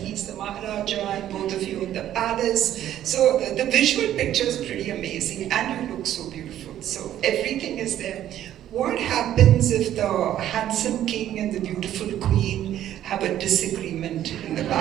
he's the Maharaja, and both of you in the palace. So the visual picture is pretty amazing, and you look so beautiful. So everything is there. What happens if the handsome king and the beautiful queen have a disagreement in the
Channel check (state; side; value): quieter; left; 11.8 dB